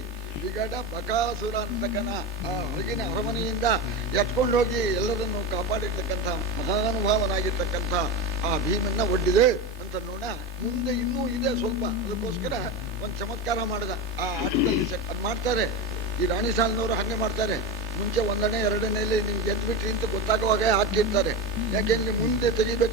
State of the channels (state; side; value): normal; both; correlation 0.19